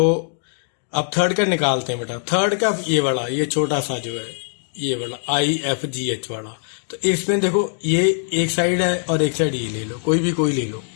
अब थर्ड का निकालते हैं बेटा। थर्ड का ये वाला, ये छोटा सा जो है, ये वाला IFGH वाला। तो इसमें देखो ये एक साइड है और एक साइड ये ले लो, कोई ले लो।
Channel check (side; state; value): right; silent; 65 dB below the other